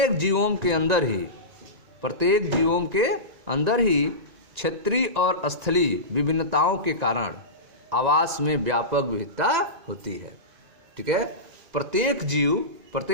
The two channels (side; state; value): left; late; 1.9 ms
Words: जीवों के अंदर ही क्षेत्रीय और स्थलीय विभिन्नताओं के कारण आवास में व्यापक विविधता होती है। ठीक है, प्रत्येक